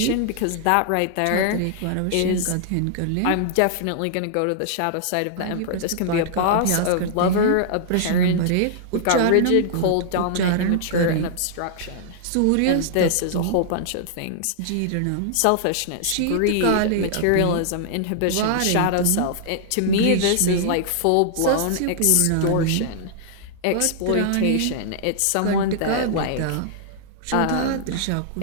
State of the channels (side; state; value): both; different; correlation -0.01